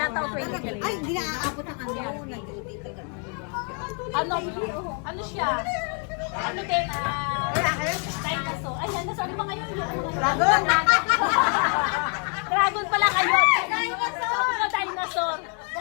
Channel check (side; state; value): right; quieter; 39.3 dB